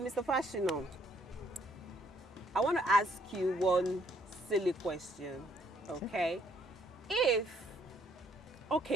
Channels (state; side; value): normal; both; correlation 0.67